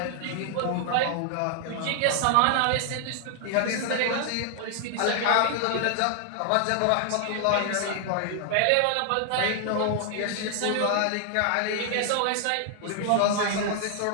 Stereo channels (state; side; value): different; both; correlation 0.00